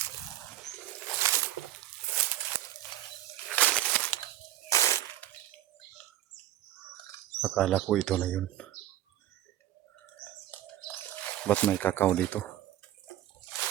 Akala ko ito na yun. Ba't may kakao dito?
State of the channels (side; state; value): left; quieter; 13.6 dB